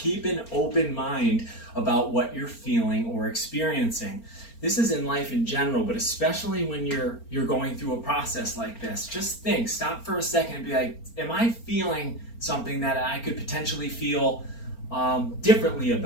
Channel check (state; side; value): late; right; 4.4 ms